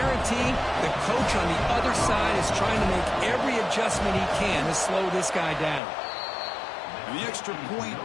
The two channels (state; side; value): drops out; right; at 5.8 s